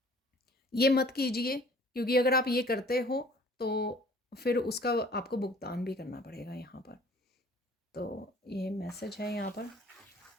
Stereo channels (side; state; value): both; normal; correlation 0.52